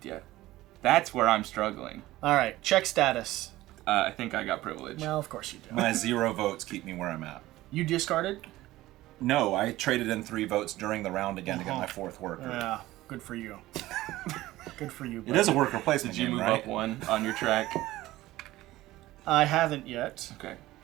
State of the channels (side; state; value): left; quieter; 16.8 dB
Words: yet. That's where I'm struggling. All right, check status. I think I got privilege. Well, of course you do. My 0 votes keep me where I'm at. You discarded? No, I traded in 3 votes during the round again to get my 4th worker. Yeah, good for you. Good for you. It is a worker placement Did you game, move right? up 1 on your track? I haven't yet, Okay,